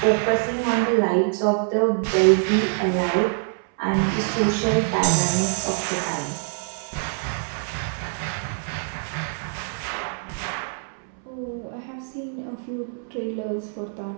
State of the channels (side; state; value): left; silent; 62 dB below the other